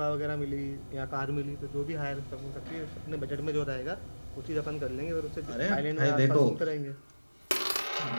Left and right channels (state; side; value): inverted; both; correlation -1.00